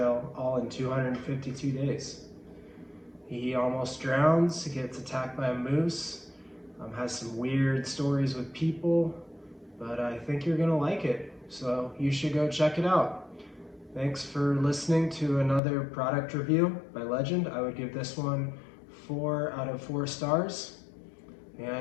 all in 252 days. He almost drowns, he gets attacked by a moose, has some weird stories with people, but I think you're gonna like it, so you should go check it out. Thanks for listening to another product review by Legend. I would give this one 4 out of 4 stars,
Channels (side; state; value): right; drops out; at 15.6 s